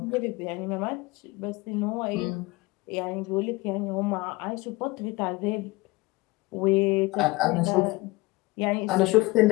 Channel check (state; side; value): quieter; right; 22.2 dB